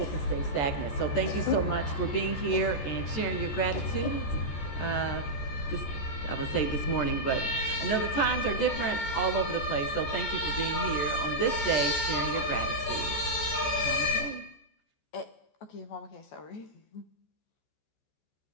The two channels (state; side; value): late; right; 14 ms